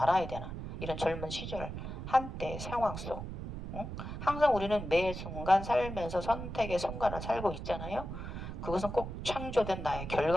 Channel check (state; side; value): noise; right; rumble, 7 dB below the sound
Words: 되나? 이런 젊은 시절 한때 상황 속. 응? 항상 우리는 매 순간 살면서 선택의 순간을 살고 있잖아요. 그것은 꼭 창조된 나의